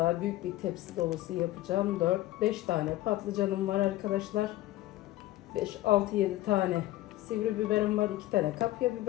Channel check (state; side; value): quieter; right; 16.2 dB